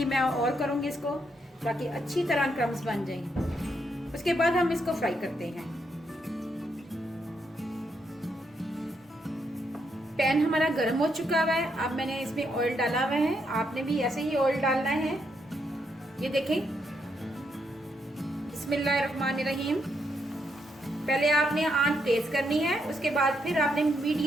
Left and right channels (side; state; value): both; normal; correlation 0.78